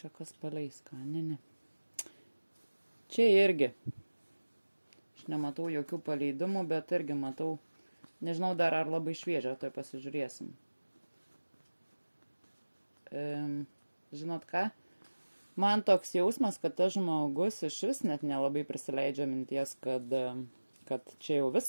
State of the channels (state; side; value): inverted; both; correlation -1.00